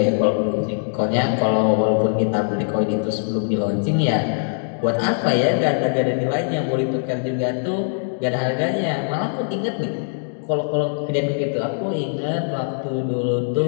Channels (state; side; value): silent; right; digital silence